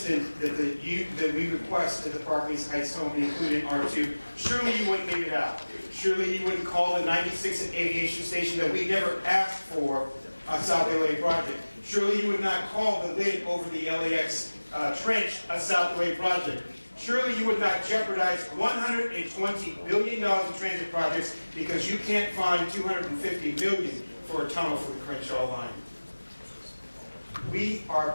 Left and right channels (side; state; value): both; inverted; correlation -1.00